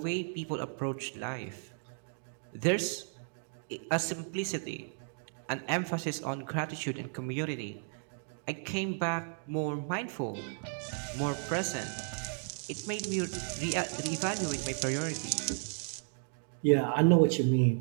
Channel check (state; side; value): silent; left; digital silence